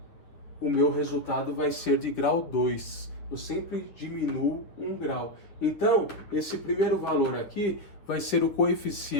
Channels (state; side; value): late; right; 10 ms